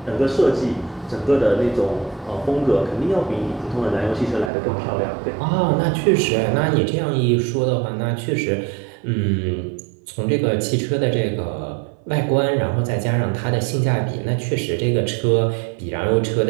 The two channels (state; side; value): drops out; left; at 4.5 s